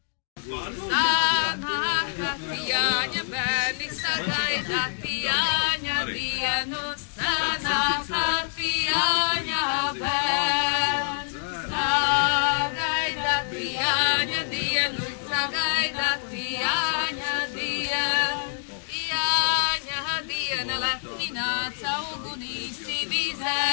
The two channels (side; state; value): right; silent; digital silence